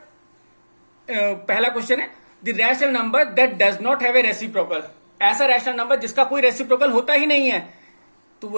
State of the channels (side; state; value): both; inverted; correlation -1.00